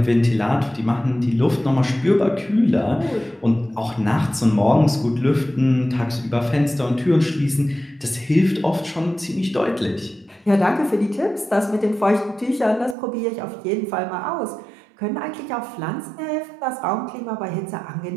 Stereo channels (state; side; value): drops out; left; at 13.0 s